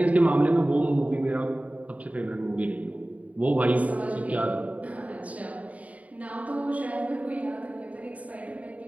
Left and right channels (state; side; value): late; left; 0.069 ms